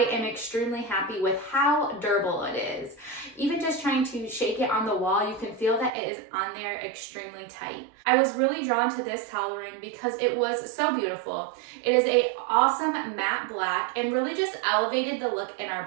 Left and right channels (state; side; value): drops out; left; at 5.9 s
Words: am extremely happy with how durable it is. Even just trying to shake it on the wall, you can feel that it is on there extremely tight. I was really drawn to this towel ring because it was so beautiful. It is an awesome matte black and really just elevated the look in our